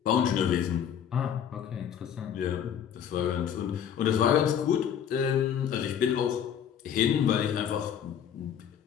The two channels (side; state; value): right; quieter; 8.8 dB